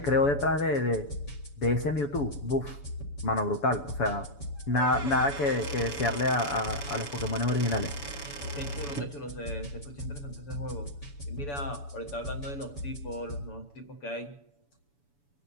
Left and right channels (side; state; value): right; late; 7.0 ms